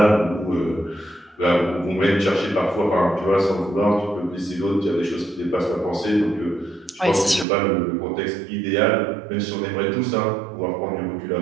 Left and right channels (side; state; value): left; drops out; at 7.5 s